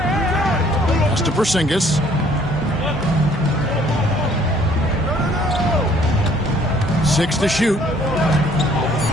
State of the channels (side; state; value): both; normal; correlation 0.59